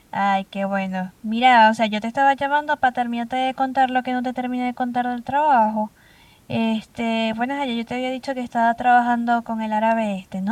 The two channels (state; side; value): identical; both; correlation 1.00